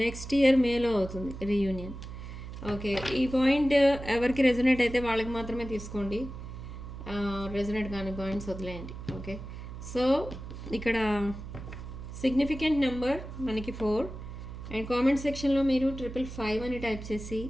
నెక్స్ట్ ఇయర్ మేలో అవుతుంది రీయూనియన్. ఓకే, ఈ పాయింట్ ఎవరికి రెజొనేట్ అయితే వాళ్ళకి మాత్రమే తీసుకోండి, రెజొనేట్ కాని పాయింట్స్ వదిలేయండి. ఓకే, సో ఇక్కడ సిగ్నిఫికెంట్ నెంబర్ మనకి 4. అండ్ కామెంట్ సెక్షన్లో మీరు 555 అని టైప్ చేసి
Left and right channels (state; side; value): noise; right; hum, 10 dB below the sound